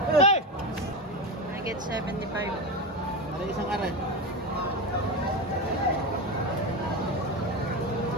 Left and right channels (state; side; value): normal; both; correlation 0.18